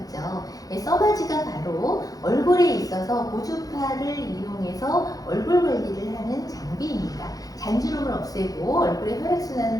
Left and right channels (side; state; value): right; late; 0.18 ms